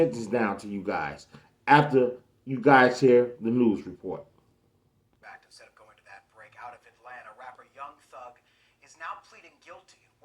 down to you guys after you guys hear the news report. Instead of going to that break out of Atlanta, rapper Young Thug is now pleading guilty in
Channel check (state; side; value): identical; both; correlation 1.00